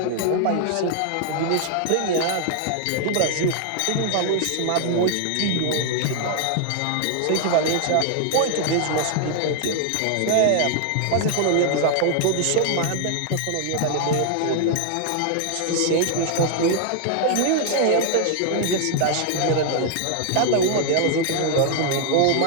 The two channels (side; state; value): both; different; correlation 0.00